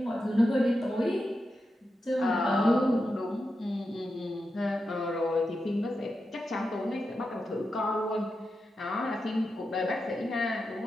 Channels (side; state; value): both; normal; correlation 0.89